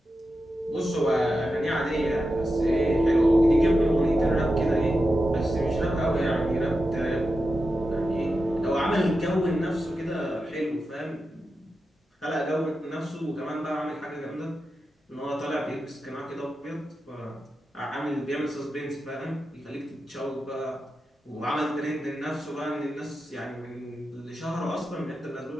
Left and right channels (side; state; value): both; normal; correlation 0.90